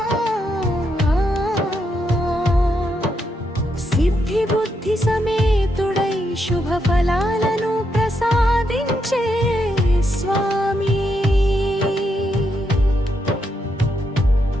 సిద్ధి బుద్ధి సమేతుడై శుభ ఫలాలను ప్రసాదించే స్వామి,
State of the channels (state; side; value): normal; both; correlation 0.80